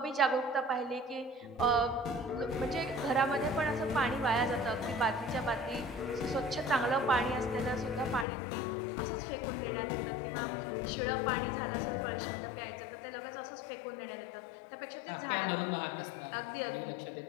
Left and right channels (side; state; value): right; drops out; at 8.2 s